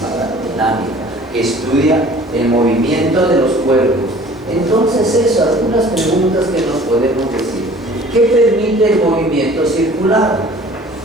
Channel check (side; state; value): both; normal; correlation 0.49